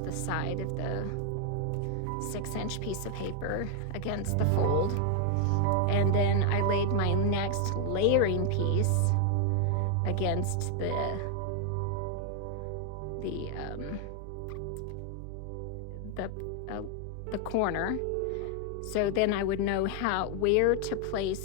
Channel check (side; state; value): both; different; correlation 0.00